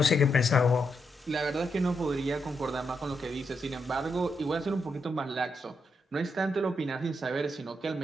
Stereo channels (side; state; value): both; normal; correlation 0.81